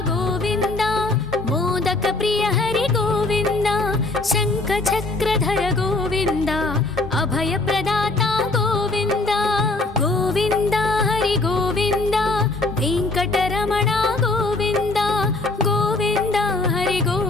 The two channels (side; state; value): right; quieter; 3.1 dB